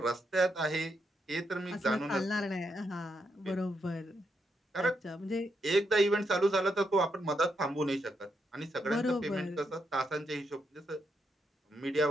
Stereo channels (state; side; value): normal; both; correlation 0.80